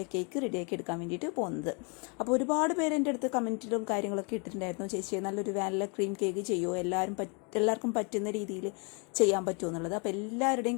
ഈ കേക്ക് റെഡിയാക്കി എടുക്കാൻ വേണ്ടിയിട്ട് പോകുന്നത്. അപ്പോൾ ഒരുപാട് പേര് എൻ്റെ അടുത്ത് കമൻറ്റിലും കാര്യങ്ങളൊക്കെ ഇട്ടിട്ടുണ്ടായിരുന്നു, ചേച്ചി നല്ലൊരു വാനില ക്രീം കേക്ക് ചെയ്യുമോ, എല്ലാവർക്കും പറ്റുന്ന രീതിയിൽ ചെയ്യാൻ പറ്റുമോ എന്നുള്ളത്. അപ്പോൾ എല്ലാവരുടെയും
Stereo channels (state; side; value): quieter; right; 34.5 dB